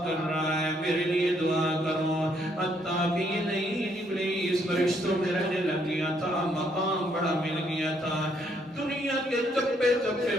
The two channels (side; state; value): both; normal; correlation 0.71